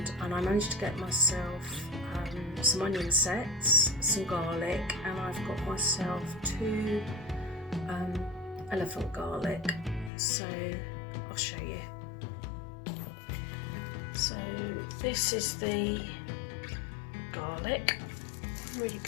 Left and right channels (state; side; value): drops out; right; at 10.1 s